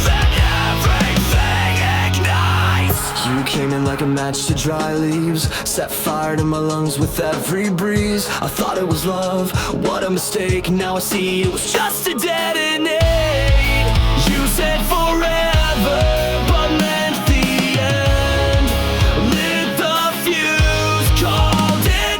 then everything ignites. You came in like a match to dry leaves, set fire to my lungs with every breeze. I thought it was love, what a mistake. Now I see it was just a detonate. You said forever, but meant the end. Lit the fuse, called it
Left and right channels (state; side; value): identical; both; correlation 1.00